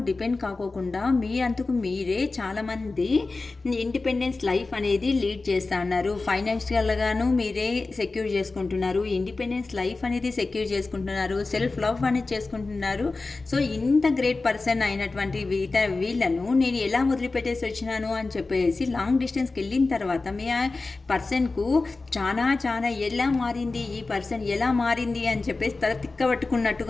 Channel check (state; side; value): quieter; right; 3.6 dB